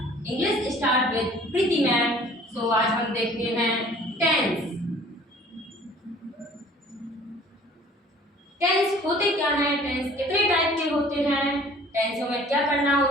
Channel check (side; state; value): both; normal; correlation 0.51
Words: English start with Preeti ma'am. So आज हम देखते हैं टेंस। टेंस होते क्या हैं, टेंस कितने टाइप के होते हैं, टेंसों में क्या करना